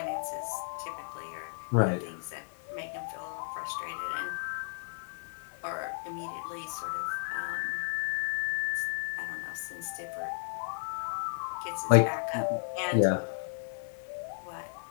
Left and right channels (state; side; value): silent; right; digital silence